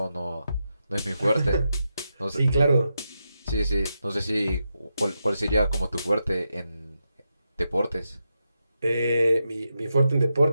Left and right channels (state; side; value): inverted; both; correlation -0.86